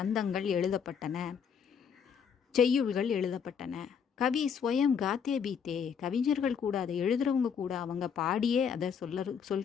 எழுதப்பட்டன, செய்யுள்கள் எழுதப்பட்டன. கவி ஸ்வயம் காத்தே பீத்தே. கவிஞர்கள் கூட அதை எழுதுறவங்க கூட அவங்க பாடியே அதை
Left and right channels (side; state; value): right; quieter; 7.1 dB